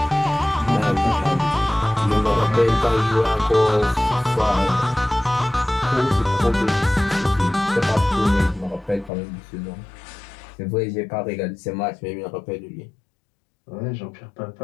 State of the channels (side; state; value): right; drops out; at 9.1 s